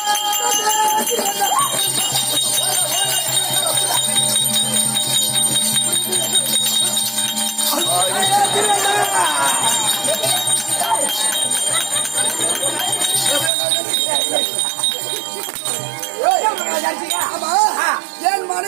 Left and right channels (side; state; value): left; drops out; at 13.5 s